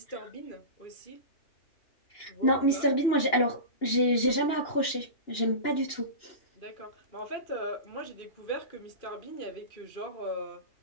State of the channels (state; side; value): late; right; 2.9 ms